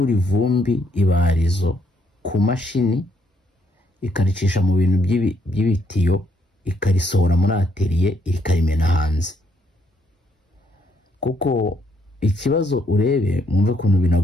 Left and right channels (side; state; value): both; normal; correlation 0.72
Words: ivumbi ibarizo ku mashini ikaricisha mu bintu by'ibitiyo ikarisohora muri atelier ikarimena hanze. Kuko ikibazo urebe mwumve kuntu